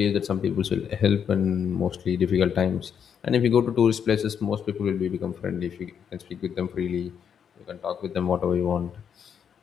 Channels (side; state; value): right; quieter; 7.8 dB